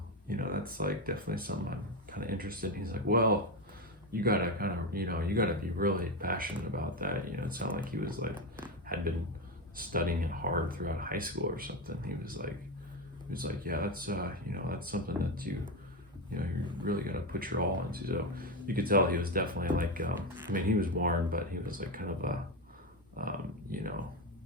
You know, that's like definitely something I'm kind of interested in. He's like, well, you gotta you gotta be really passionate about that. You know, it sounded like he was like, had been studying it hard throughout high school or something. He was like, yeah, that's, that's something that you really gotta put your all into. So you could tell he was definitely like, he was warm, but he was like kind of a,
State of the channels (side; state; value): both; normal; correlation 0.13